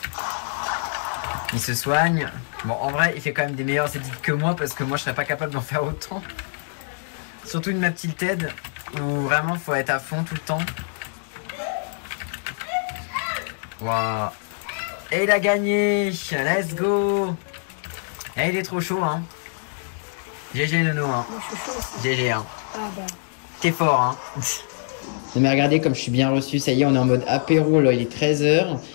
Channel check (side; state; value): right; silent; digital silence